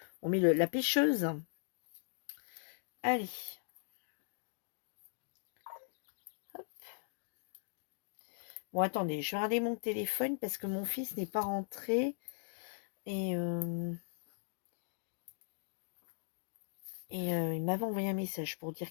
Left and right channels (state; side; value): silent; right; digital silence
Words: la pêcheuse. Allez. Hop. Bon, attendez, je vais regarder mon téléphone parce que mon fils n'est pas rentré. Et il m'avait envoyé un message pour